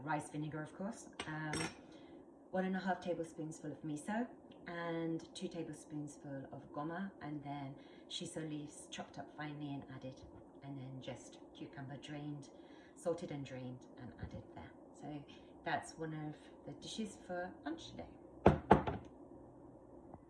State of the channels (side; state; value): both; identical; correlation 1.00